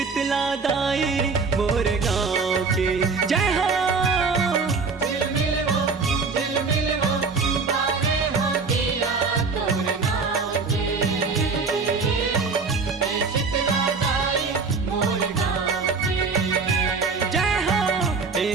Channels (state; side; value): quieter; left; 4.6 dB